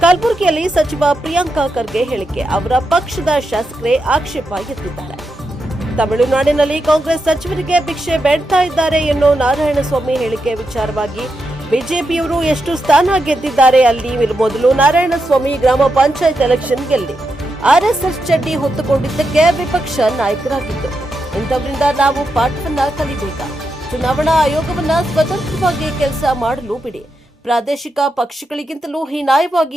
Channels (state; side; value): normal; both; correlation 0.85